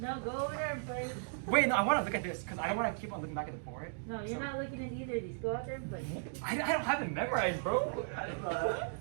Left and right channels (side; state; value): left; silent; digital silence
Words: go over there and play. Wait, no, I want to look at this because I don't want to keep on looking back at the board. No, you're not looking at either of these. Go out there and play. I don't have it memorized, bro.